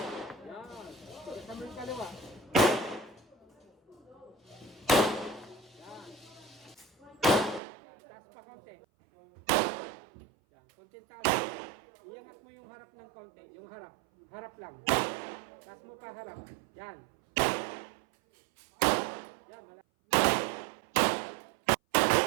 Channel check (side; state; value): left; drops out; at 7.6 s